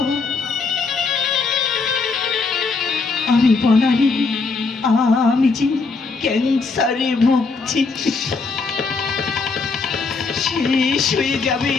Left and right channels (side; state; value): right; quieter; 4.3 dB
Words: আমি বনানি, আমি যে ক্যান্সারে ভুগছি। শেষ হয়ে যাবে